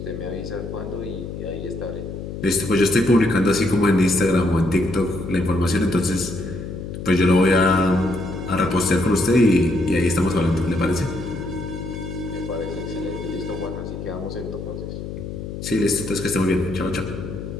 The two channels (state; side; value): noise; left; hum, 8 dB below the sound